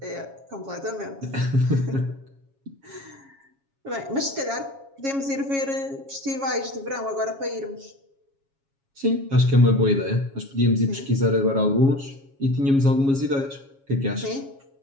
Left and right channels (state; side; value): late; left; 7.3 ms